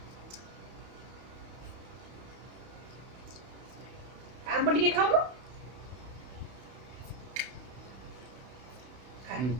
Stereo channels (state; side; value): late; left; 31 ms